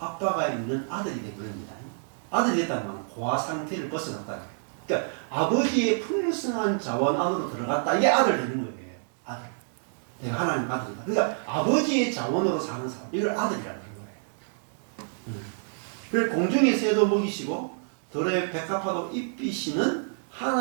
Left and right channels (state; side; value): silent; left; digital silence